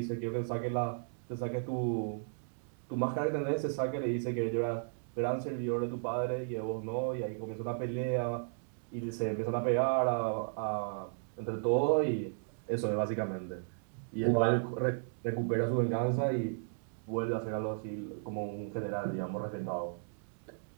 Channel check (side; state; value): left; silent; digital silence